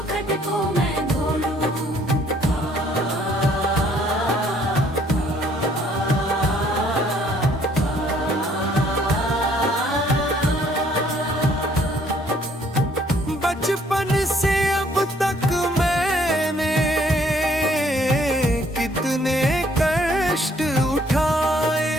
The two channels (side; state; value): both; normal; correlation 0.63